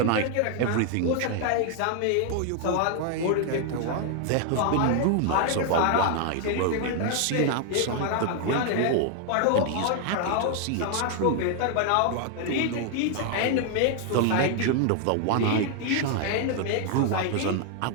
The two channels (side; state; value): both; different; correlation 0.00